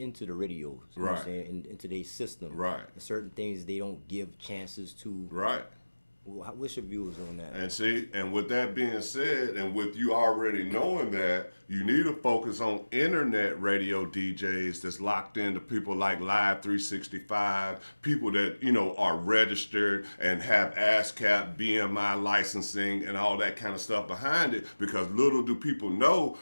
the radios. You know what I'm saying? Into their system. Right. And certain things they don't give chances to. Right. What's your views on that? And see, and with that being said, and with you already knowing that, you need to focus on internet radio DJs that's locked into people like Live 365, people that, are registered and have ASCAP, BMI licensing and all that kind of stuff behind it, because little do people know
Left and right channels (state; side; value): inverted; both; correlation -1.00